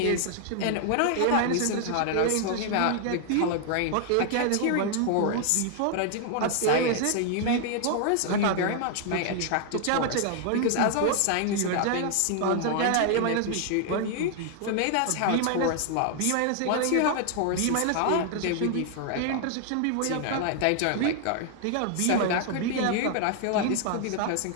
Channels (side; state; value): both; different; correlation 0.00